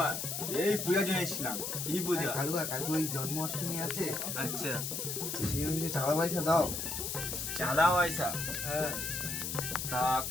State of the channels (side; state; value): left; noise; hiss, 3 dB below the sound